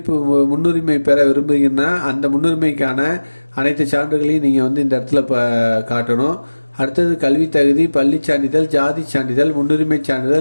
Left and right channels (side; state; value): both; inverted; correlation -1.00